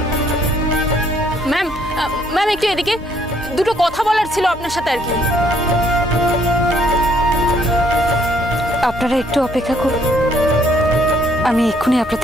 ম্যাম, ম্যাম একটু এদিকে, দুটো কথা বলার ছিল আপনার সাথে আর কি। আপনারা একটু অপেক্ষা করুন, আমি এক্ষুনি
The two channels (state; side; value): normal; both; correlation 0.66